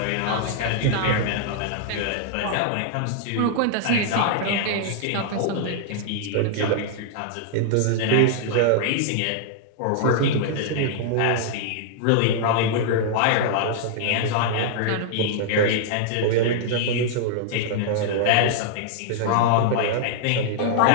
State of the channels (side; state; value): both; different; correlation -0.01